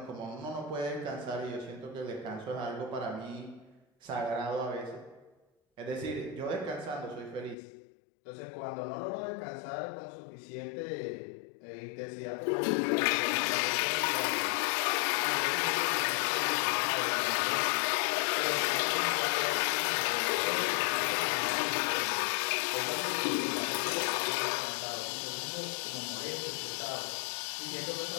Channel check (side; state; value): right; drops out; at 7.6 s